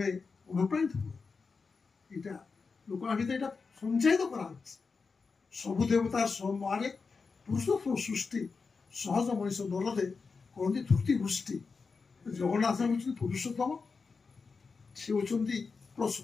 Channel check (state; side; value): quieter; right; 4.7 dB